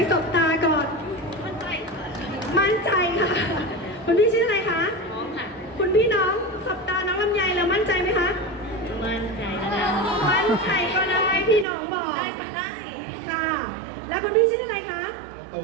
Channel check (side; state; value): left; drops out; at 11.7 s